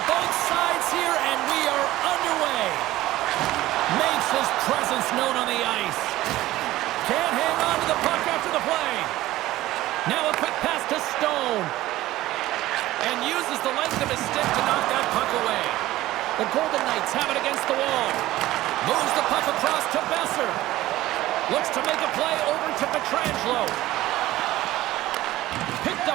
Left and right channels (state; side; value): quieter; left; 16.2 dB